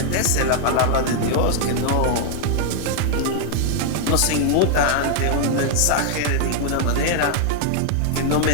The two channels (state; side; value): different; both; correlation 0.00